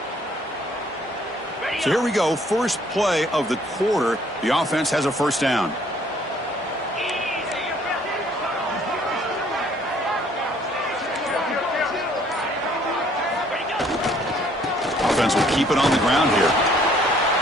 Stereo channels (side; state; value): both; normal; correlation 0.61